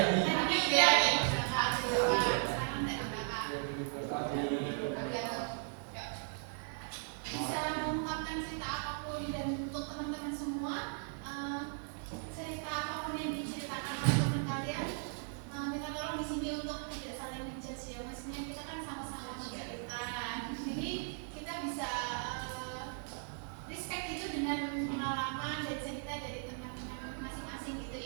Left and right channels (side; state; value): left; silent; 53 dB below the other